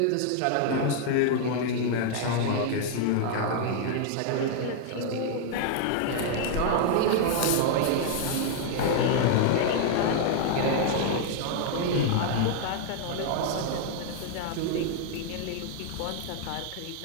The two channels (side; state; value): both; different; correlation 0.00